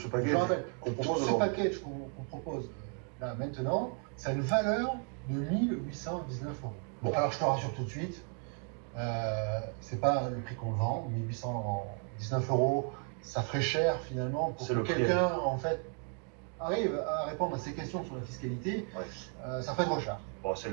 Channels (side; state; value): left; quieter; 38.5 dB